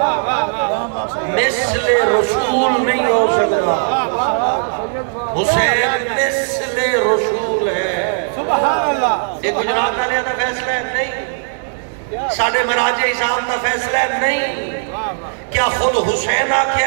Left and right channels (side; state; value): left; silent; digital silence